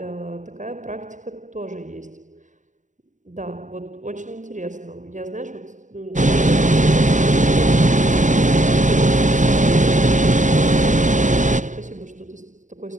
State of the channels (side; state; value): left; late; 0.36 ms